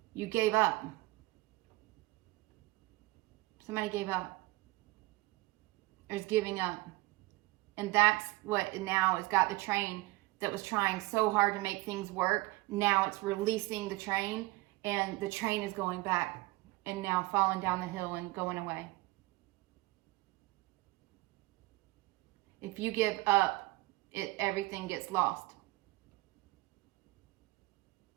You gave up. Somebody gave up. There's giving up, and that's what now has got the train that was trying so hard to make things work. Now it's releasing the train, and the train is going back and now falling down the hill and going away. If you give up, everything gets lost.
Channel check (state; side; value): quieter; left; 21.1 dB